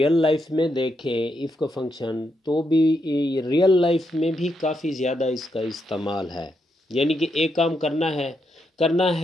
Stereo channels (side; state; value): both; normal; correlation 0.81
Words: लाइफ में देखें इफ़ का फंक्शन, तो भी रियल लाइफ में भी काफ़ी ज़्यादा इसका इस्तेमाल है। यानी कि एक काम करना